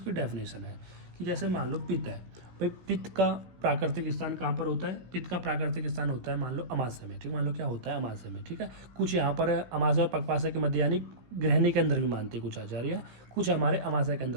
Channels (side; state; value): left; late; 16 ms